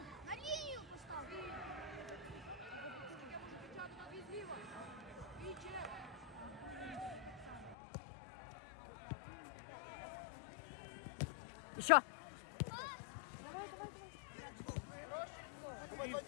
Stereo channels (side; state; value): right; drops out; at 7.8 s